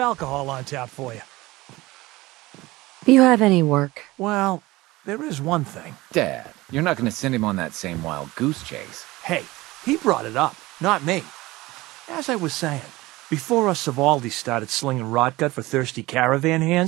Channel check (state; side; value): quieter; left; 19.8 dB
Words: on tap for you. Do you have any work? Well, there is one thing. Dad, you're not gonna send him on that same wild goose chase. Hey, he brought it up, not me. As I was saying, before us Savaldis started slinging rotgut for thirsty caravan